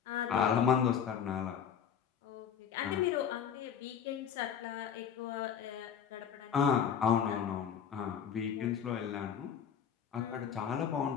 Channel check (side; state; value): right; quieter; 8.0 dB